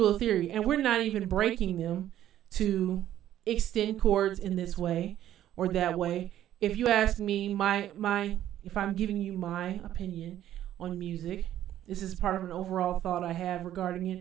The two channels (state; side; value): quieter; left; 12.1 dB